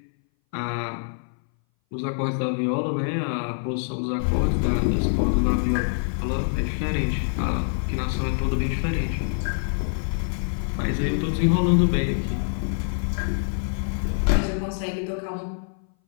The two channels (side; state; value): right; silent; 59 dB below the other